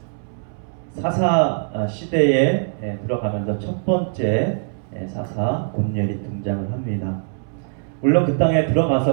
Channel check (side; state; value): left; silent; 64 dB below the other